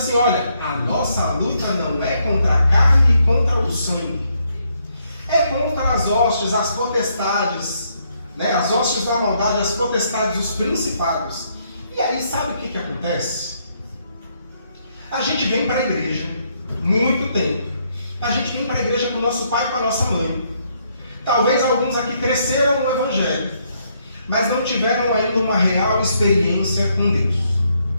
olha, a nossa luta não é contra a carne e contra o sangue. É contra as hostes, as potestades, né? As hostes da maldade, as potestades, os principados. E aí, sabe o que acontece? A gente vem para a igreja, muito tempo. A gente vem para a igreja com o nosso pai e com a nossa mãe. Talvez alguns aqui cresceram no Evangelho, mas não tiveram ainda uma real experiência com Deus.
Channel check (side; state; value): both; inverted; correlation -0.73